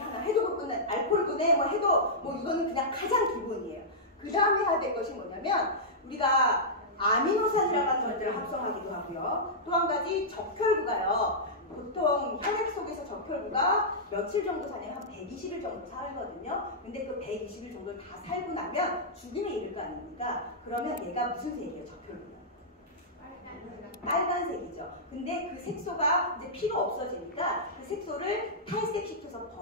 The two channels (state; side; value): normal; both; correlation -0.12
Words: 해독분은 알코올분에 뭐 해도 뭐 이거는 그냥 가장 기본이에요. 그 다음에 해야 될 것이 뭐냐면 우리가 아미노산이라고 하는 것들을 합성하기도 하고요. 또 한 가지 적혈구가요. 보통 혈액 속에서 적혈구가 며칠 정도 사냐면 한 120일 정도 살거든요. 근데 그 120일 정도를 다 살고 나면 죽음에 이를 거 아닙니까? 그러면 얘가 무슨 색이에요, 적혈구가? 빨간색이죠. 근데 그 색소가 이제 피가 없어지니까 그 색소를 탈색시켜서